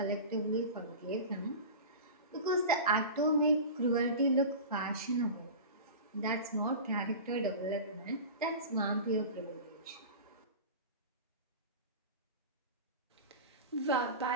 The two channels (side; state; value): both; inverted; correlation -0.31